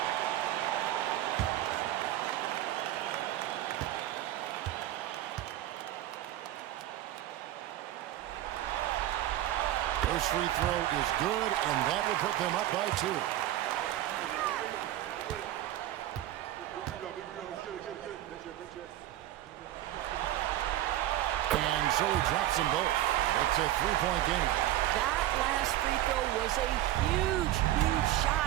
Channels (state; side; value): quieter; left; 13.8 dB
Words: First free throw is good, and that will put them up by 2. And so he drops them both. It's a 3-point game. That last free throw was a huge, huge